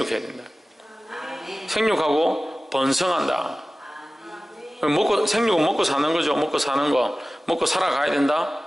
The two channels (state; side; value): normal; both; correlation 0.96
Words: 된다. 생육하고 번성한다. 생육은 먹고 사는 거죠. 먹고 사는 거. 먹고 살아가야 된다.